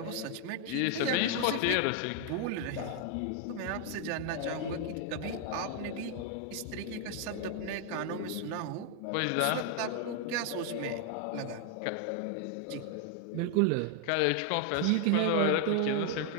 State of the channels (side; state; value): both; different; correlation 0.00